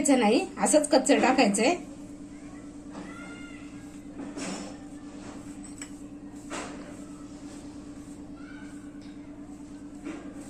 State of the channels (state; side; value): identical; both; correlation 1.00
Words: नाही, असंच कच्चं टाकायचंय.